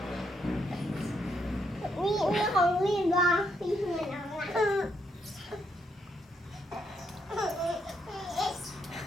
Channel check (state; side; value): normal; both; correlation 0.76